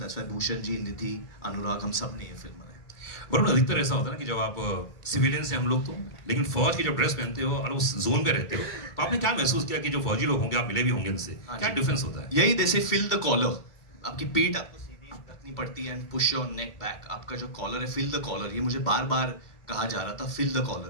why Bhushan ji, Nidhi, Anurag, हम सब ने ये फिल्म बनाई। वरुण, अधिकतर ऐसा होता है ना कि जब आप सिविलियन से हम लोग तो, लेकिन फौज की जब ड्रेस पहनते हो और उस जोन में रहते हो, तो आपने क्या महसूस किया कि जो फौजी लोग होंगे, आप मिले भी होंगे उनसे, क्या डिफरेंस होता है? यही, दे से फिल द कॉलर, आपकी पीठ आपको सीधी रखनी पड़ती है and push your neck back. आपका जो कॉलर है, फिल द कॉलर, ये मुझे बार बार कहा जा रहा था, फिल द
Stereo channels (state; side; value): late; right; 2.3 ms